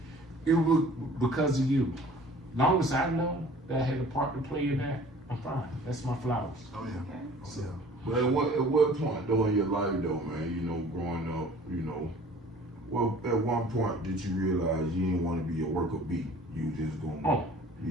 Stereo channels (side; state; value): both; normal; correlation 0.49